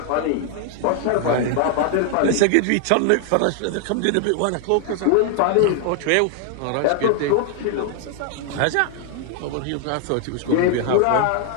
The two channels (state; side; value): different; both; correlation 0.00